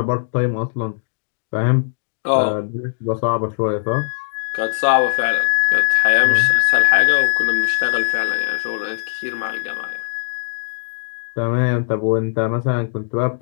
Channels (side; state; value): right; silent; digital silence